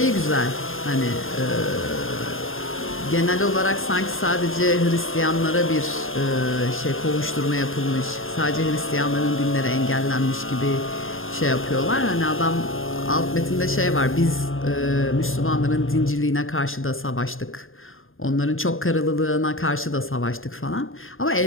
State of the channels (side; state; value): right; late; 0.60 ms